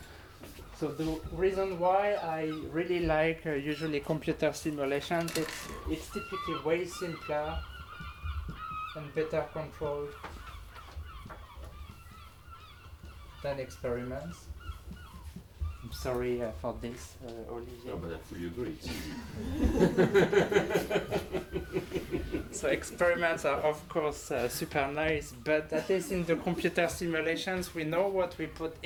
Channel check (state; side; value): identical; both; correlation 1.00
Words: So the reason why I really like usually computer simulations, it's typically way simpler and better controlled than experiments. I'm sorry for this, Olivier. No, but I fully agree. So experiments are of course super nice, but at least in the computer simulations we know what we put